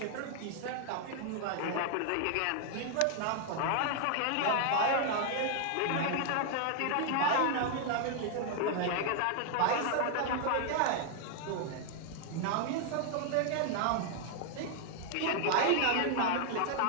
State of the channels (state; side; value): different; both; correlation 0.00